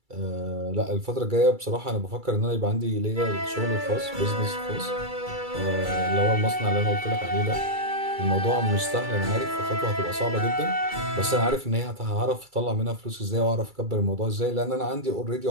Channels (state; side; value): late; left; 2.3 ms